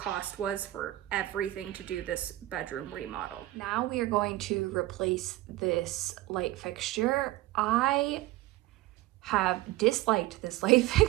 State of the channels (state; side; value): quieter; left; 16.8 dB